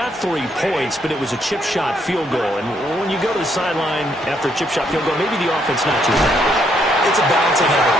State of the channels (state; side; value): normal; both; correlation 0.73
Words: 3 points, but it was a chip shot field goal. And when you go to the sideline after a chip shot field goal, maybe the offense not too bad. It's a balancing